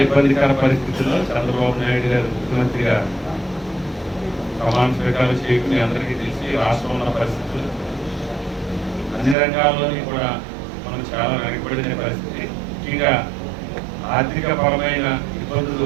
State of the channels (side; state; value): left; drops out; at 9.3 s